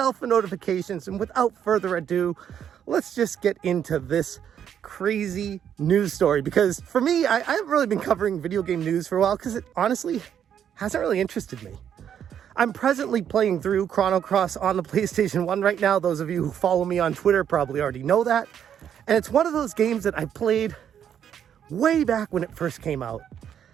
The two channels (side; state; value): left; quieter; 9.0 dB